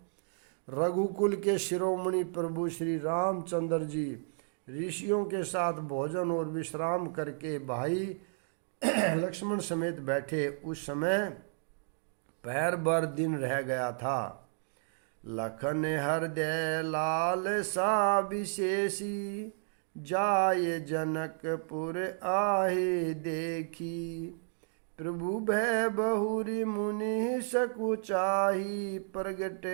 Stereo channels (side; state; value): left; silent; digital silence